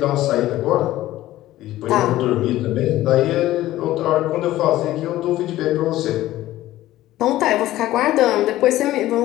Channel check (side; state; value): right; quieter; 15.2 dB